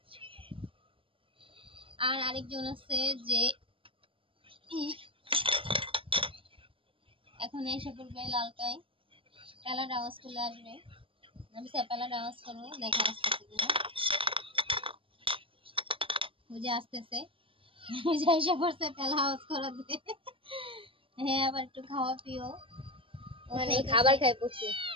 আর আরেকজন আছে যে এখন এসে পড়বে লালটাই, পেলার আওয়াজ চলে আসবে। আমি পেলার আওয়াজ করবো, দেখা আসতেছে কিনা। বুঝে আসতেছে, এসে পড়ছে পেলা আওয়াজ করাতে। হ্যাঁ, আবার একটু খাওয়া পিও, মানে খাবার খায় প্রচুর।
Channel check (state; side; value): late; left; 0.26 ms